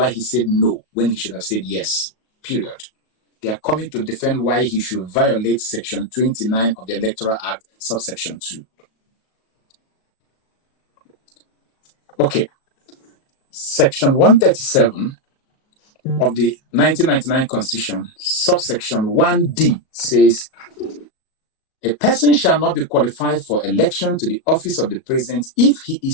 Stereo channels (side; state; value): right; late; 37 ms